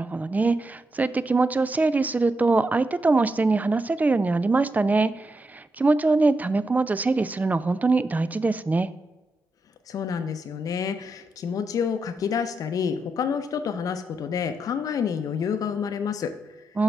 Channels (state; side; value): normal; both; correlation 0.84